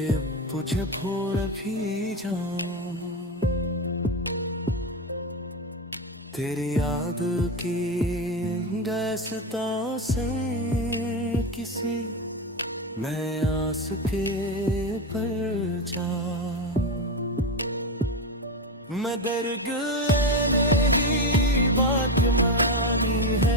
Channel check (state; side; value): normal; both; correlation 0.15